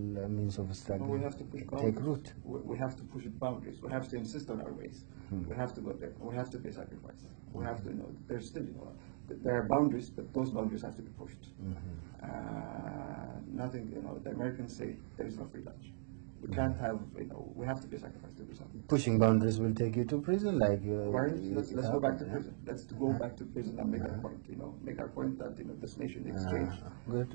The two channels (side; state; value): left; silent; digital silence